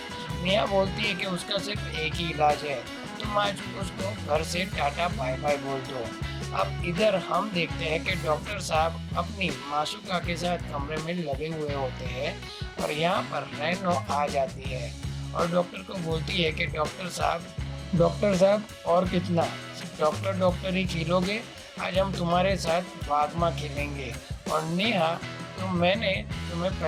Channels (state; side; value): identical; both; correlation 1.00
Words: नेहा बोलती है कि उसका सिर्फ एक ही इलाज है, तुम आज उसको घर से टाटा बाय बाय बोल दो। अब इधर हम देखते हैं कि डॉक्टर साहब अपनी मासूका के साथ कमरे में लगे हुए होते हैं और यहाँ पर रेनो आ जाती है और डॉक्टर को बोलती है कि डॉक्टर साहब और कितना, डॉक्टर ही खेलोगे, आज हम तुम्हारे साथ वागमा खेलेंगे। और नेहा मैंने तुम्हें